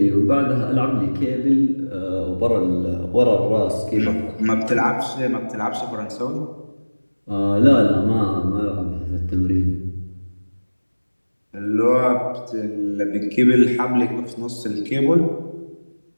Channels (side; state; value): both; inverted; correlation -1.00